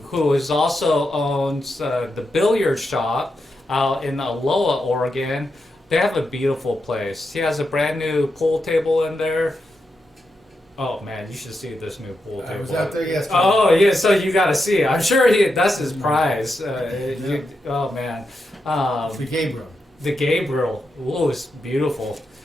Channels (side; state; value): both; normal; correlation 0.86